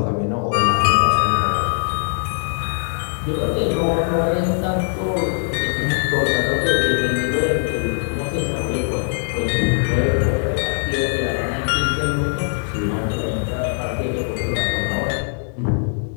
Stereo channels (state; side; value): silent; right; digital silence